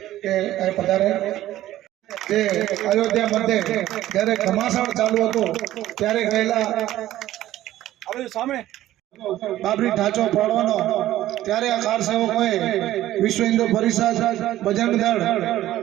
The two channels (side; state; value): left; quieter; 14.2 dB